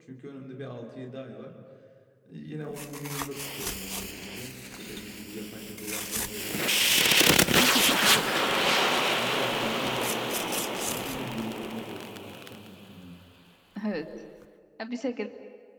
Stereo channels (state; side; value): identical; both; correlation 1.00